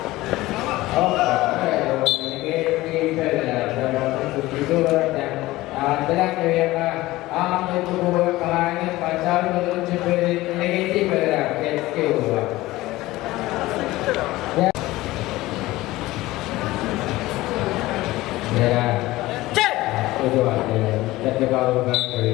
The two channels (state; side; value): quieter; right; 18.1 dB